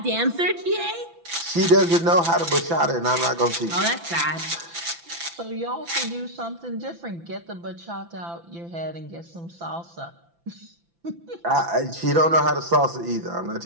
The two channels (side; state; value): left; late; 5.9 ms